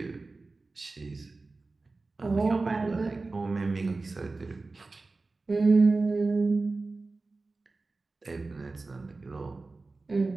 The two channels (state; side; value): quieter; left; 3.6 dB